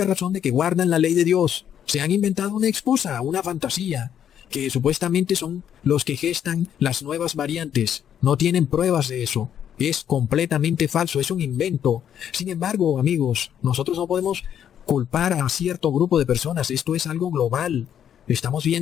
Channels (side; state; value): right; quieter; 9.4 dB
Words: razón de que guardan la ley de Dios. Se han inventado una excusa, una fantasía, que supuestamente son los que gestan las nuevas variantes. No tienen pruebas de eso. Es completamente falso, es un invento. Sin embargo, amigos, nosotros no podemos culpar a cierto grupo de personas. Esto es algo global. Estamos